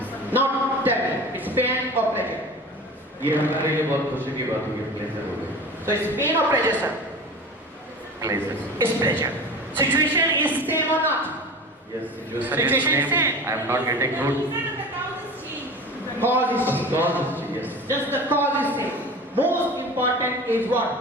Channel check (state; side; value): normal; both; correlation 0.35